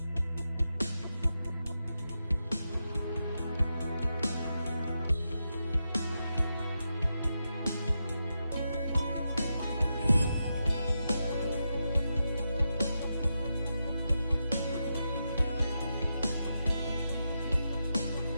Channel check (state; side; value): inverted; both; correlation -0.87